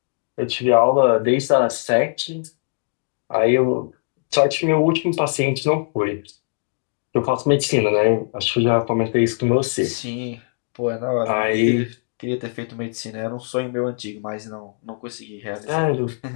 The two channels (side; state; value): right; silent; digital silence